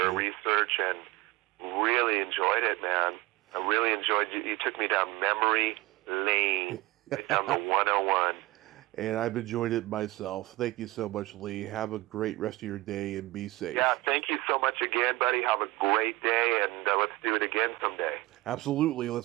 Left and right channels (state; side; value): quieter; left; 19.9 dB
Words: research, and really enjoyed it, man. I really enjoyed you. You took me down memory lane, down the 101. And I've enjoyed it myself. Thank you so much, Lee. Have a great rest of your day and be safe. Yeah, thank you so much again, buddy. Have a great day, and let's do it again someday. Absolutely.